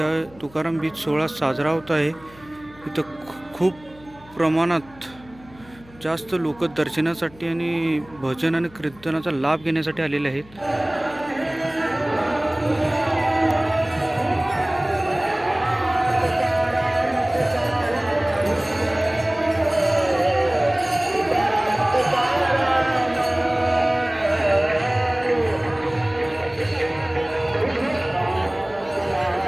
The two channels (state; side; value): noise; left; hum, 24 dB below the sound